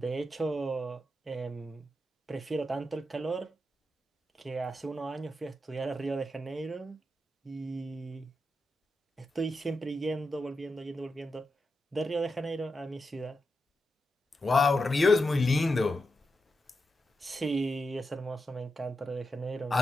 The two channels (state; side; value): normal; both; correlation 0.87